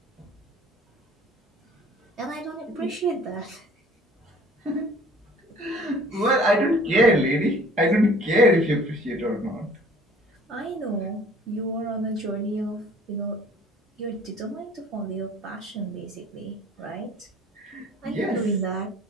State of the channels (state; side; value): normal; both; correlation 0.52